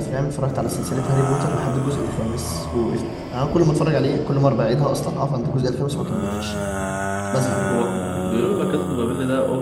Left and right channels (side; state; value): both; identical; correlation 1.00